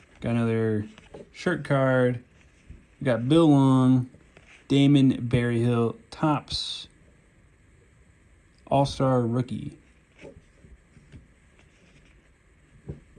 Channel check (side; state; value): both; identical; correlation 1.00